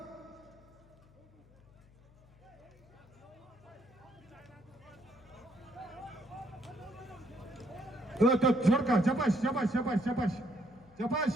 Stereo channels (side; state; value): left; noise; hum, 26 dB below the sound